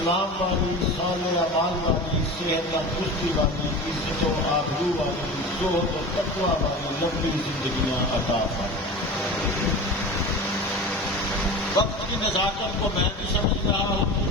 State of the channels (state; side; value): normal; both; correlation 0.32